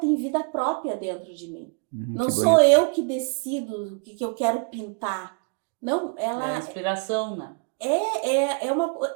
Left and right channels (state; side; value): quieter; left; 37.4 dB